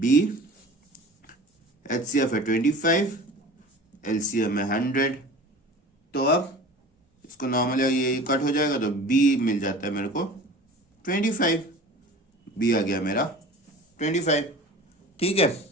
HCF है 25, LCM है 100। तो अब इसको नॉर्मली ये कट हो जाएगा, तो B मिल जाता है मेरे को 25, बी आ गया मेरा 25, ठीक है।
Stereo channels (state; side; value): normal; both; correlation 0.40